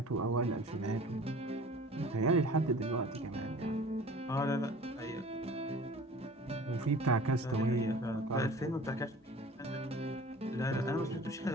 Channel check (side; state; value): both; normal; correlation 0.44